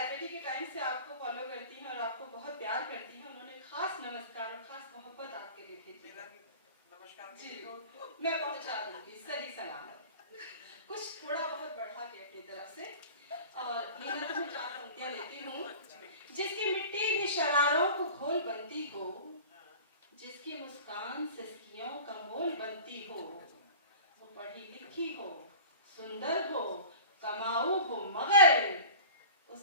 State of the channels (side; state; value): both; inverted; correlation -0.40